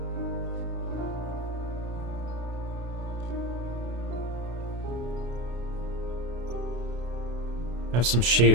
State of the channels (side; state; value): left; late; 33 ms